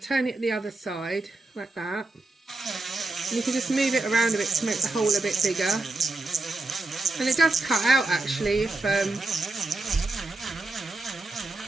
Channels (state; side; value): quieter; left; 3.1 dB